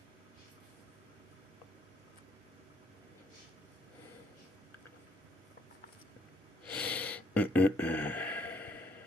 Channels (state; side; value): normal; both; correlation 0.67